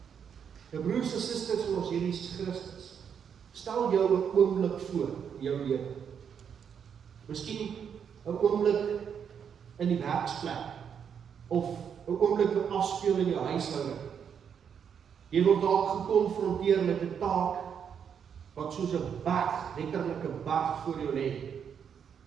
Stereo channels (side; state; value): left; quieter; 7.6 dB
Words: Nou broers en susters van ons Here Jesus Christus, stel jou 'n oomblik voor in jou lewe. Miskien 'n oomblik in die werksplek, of 'n oomblik wat afspeel in jou huishouding. Jy word dalk gekonfronteer met 'n taak wat soos 'n berg, letterlik 'n berg voor jou lê.